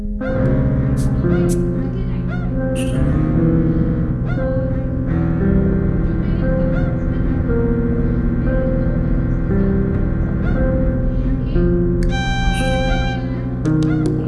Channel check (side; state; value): both; identical; correlation 1.00